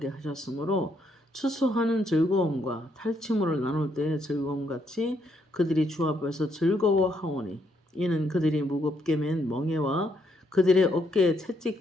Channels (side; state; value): both; normal; correlation 0.74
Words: 하셨으므로 추수하는 즐거움과 탈취물을 나눌 때의 즐거움같이 그들이 주 앞에서 즐거워하오니 이는 그들이 무겁게 맨 멍에와 그들의 어깨의